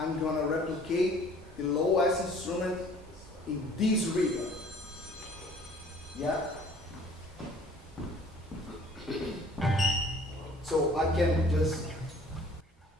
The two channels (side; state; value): both; normal; correlation 0.53